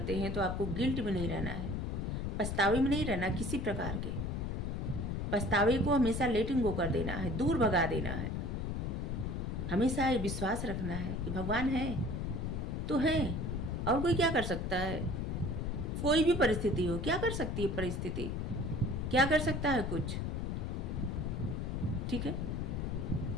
हैं तो आपको गिल्ट में नहीं रहना है, पछतावे में नहीं रहना किसी प्रकार के। पछतावे को हमेशा लेटिंग गो कर देना है, दूर भगा देना है। हमेशा ये विश्वास रखना है कि भगवान है तो है, और कोई क्या कर सकता है। कोई भी परिस्थिति हो, क्या कर सकती है परिस्थिति, क्या कर सकता है कुछ। ठीक है,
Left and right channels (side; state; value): left; noise; rumble, 2 dB below the sound